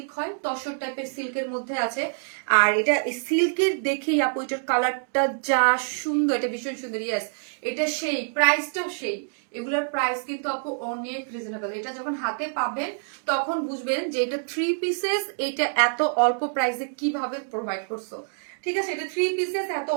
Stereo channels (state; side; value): silent; left; digital silence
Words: হয়, তসর টাইপের সিল্কের মধ্যে আছে। আর এটা সিল্কের দেখেই আপু এটার কালারটা যা সুন্দর, এটা ভীষণ সুন্দর। ইয়েস এটা সেই, প্রাইসটাও সেই। এগুলোর প্রাইস কিন্তু আপু অনেক রিজনেবল। এটা যখন হাতে পাবেন তখন বুঝবেন যে এটা 3 পিসেস, এটা এত অল্প প্রাইসে কিভাবে প্রোভাইড করছো। ঠিক আছে, এটা 3 পিসেস এত